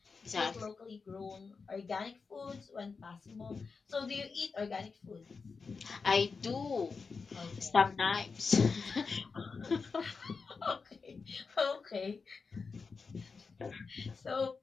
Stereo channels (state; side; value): quieter; right; 4.8 dB